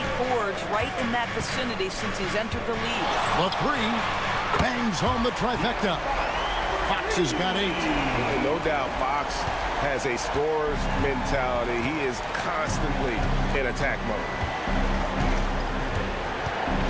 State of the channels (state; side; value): identical; both; correlation 1.00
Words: boards right in that vicinity since he's entered the league. The three bangs home the trifecta. Fox has got 8. No doubt Fox has a scorer's mentality. He is constantly in attack mode.